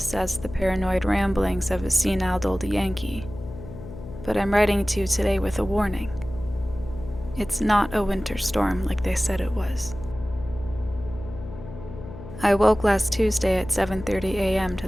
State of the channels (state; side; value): noise; left; hum, 13 dB below the sound